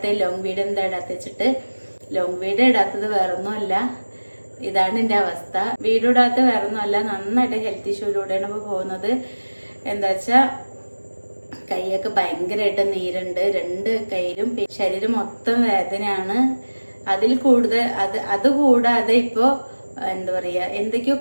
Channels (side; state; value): both; inverted; correlation -1.00